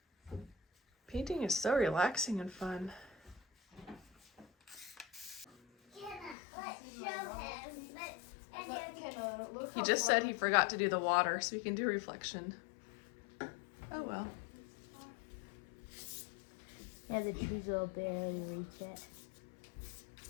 Painting is so relaxing and fun. He just said he forgot to do the water, so he can do reflection. Oh well. Yeah, the trees will barely reach it.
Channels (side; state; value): right; drops out; at 6.4 s